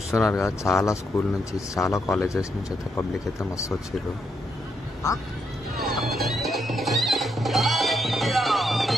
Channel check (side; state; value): both; normal; correlation 0.79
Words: కదా, చాలా స్కూల్ నుంచి చాలా కాలేజెస్ నుంచి అయితే పబ్లిక్ అయితే మస్తు వచ్చారు.